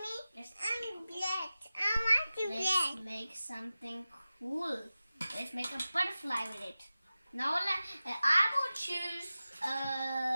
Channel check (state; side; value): inverted; both; correlation -0.95